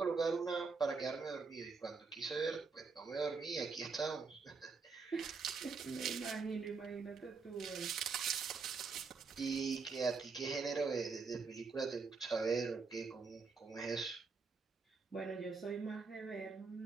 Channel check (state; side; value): quieter; left; 4.7 dB